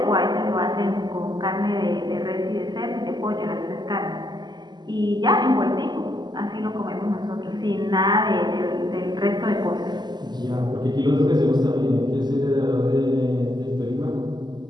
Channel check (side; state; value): left; late; 0.21 ms